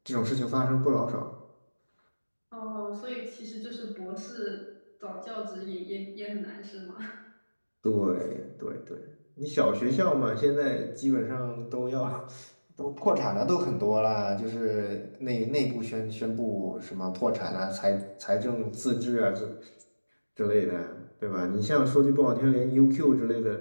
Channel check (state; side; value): inverted; both; correlation -1.00